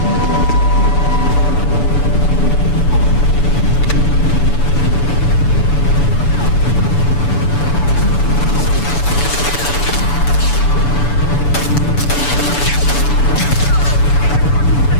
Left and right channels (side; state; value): right; late; 6.9 ms